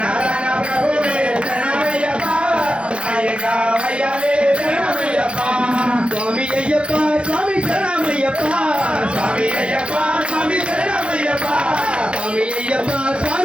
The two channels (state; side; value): late; left; 0.058 ms